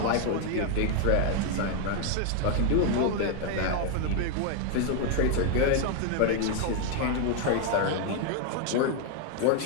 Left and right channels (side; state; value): both; different; correlation 0.00